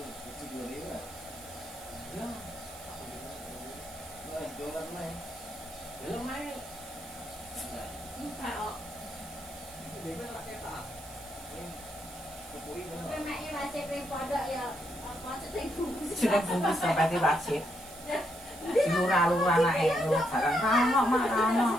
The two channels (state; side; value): noise; right; hiss, 17 dB below the sound